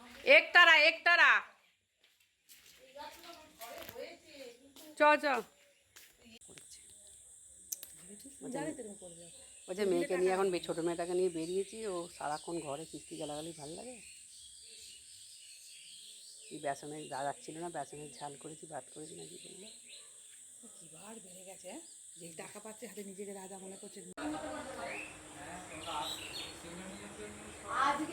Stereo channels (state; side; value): identical; both; correlation 1.00